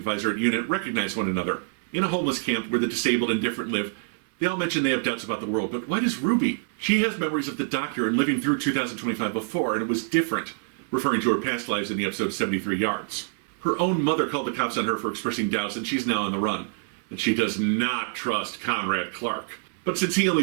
at UNIT, recognize one another. In a homeless camp where the disabled and different live, they all mention they have doubts about the world, but why does Ruby? She has memories of the doctor and living through 2025 before, and it was different, referring to her past lives in the episode 73 Yards. Her own mother called the cops on her for expressing doubts, and she's now on the run. And she does not trust Conrad Clark. But since he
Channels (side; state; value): left; silent; 61 dB below the other